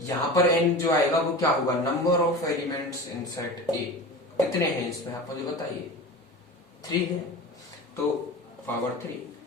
पर n जो आएगा वो क्या होगा, number of elements in set ए। कितने हैं इसमें आप मुझे बताइए, 3 है, तो पावर 3।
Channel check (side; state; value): both; normal; correlation 0.33